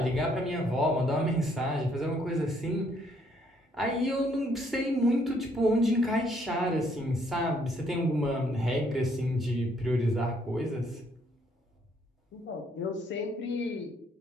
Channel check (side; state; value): both; normal; correlation 0.68